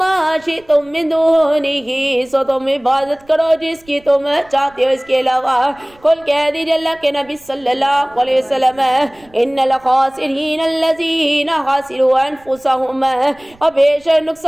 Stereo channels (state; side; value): noise; right; rumble, 29 dB below the sound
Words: शिअ्तुम मिन दूनिही, सो तुम इबादत करो जिसकी तुम चाहते हो इसके अलावा। कुल कह दीजिए अल्लाह के नबी सल्लल्लाहु अलैहि वसल्लम, इन्नल खासिरीन अल्लज़ीना खासिरू अनफुसहुम, और बेशक